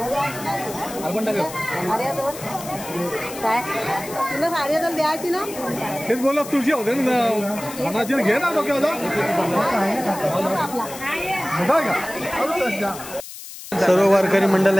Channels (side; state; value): left; noise; hiss, 13 dB below the sound